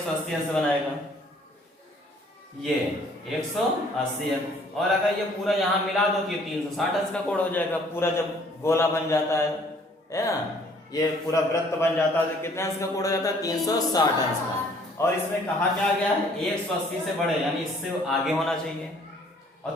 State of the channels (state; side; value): normal; both; correlation 0.59